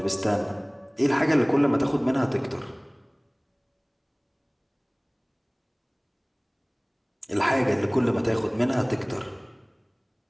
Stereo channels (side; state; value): both; identical; correlation 1.00